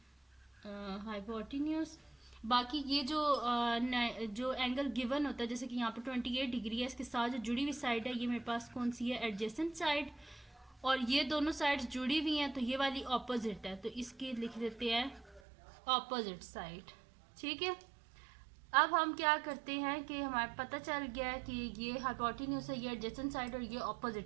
हाइपोटेन्यूज। बाकी ये जो एंगल गिवन होता है, जैसे कि यहाँ पे 28 डिग्री है, इसके साथ जो जुड़ी हुई साइड है ये मेरे पास कौन सी है, एडजेसेंट साइड। और ये दोनों साइड्स जुड़ी हुई हैं तो ये वाली ऑपोजिट है, तो इसकी लिख देते हैं ऑपोजिट साइड, ठीक है। अब हम क्या करते हैं कि हमारे पता चल गया है कि ये हाइपोटेन्यूज है, ये एडजेसेंट साइड और ये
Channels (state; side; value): drops out; left; at 15.4 s